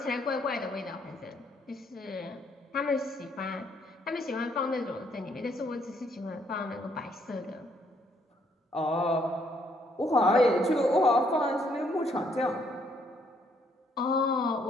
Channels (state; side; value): normal; both; correlation 0.70